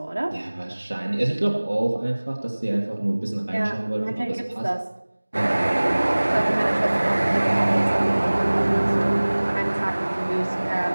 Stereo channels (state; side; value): inverted; both; correlation -1.00